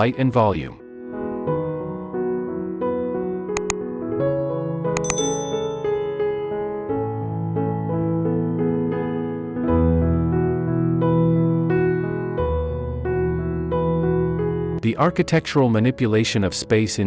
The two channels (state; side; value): identical; both; correlation 1.00